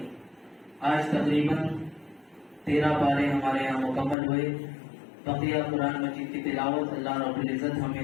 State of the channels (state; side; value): drops out; right; at 4.2 s